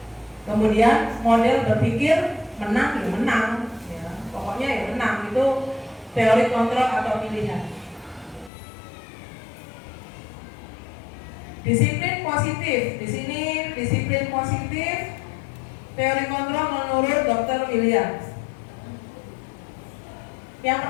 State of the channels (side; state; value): right; drops out; at 8.5 s